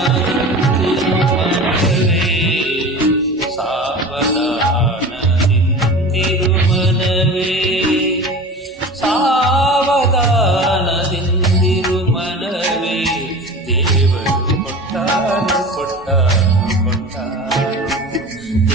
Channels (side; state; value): both; normal; correlation 0.35